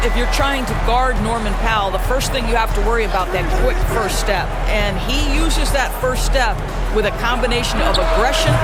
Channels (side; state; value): both; identical; correlation 1.00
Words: if you're trying to guard Norman Powell, the first thing you have to worry about that quick first step. And he uses that first step with a combination of aggression